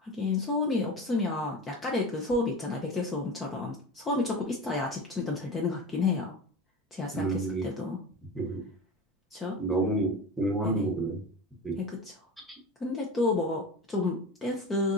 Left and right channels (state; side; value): normal; both; correlation 0.29